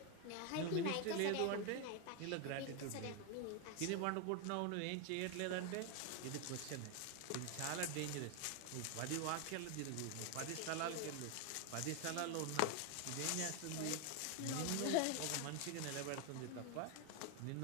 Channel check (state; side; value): different; both; correlation 0.01